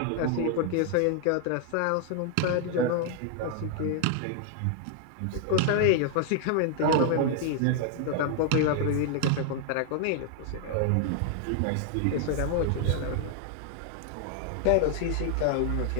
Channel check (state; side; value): different; both; correlation 0.00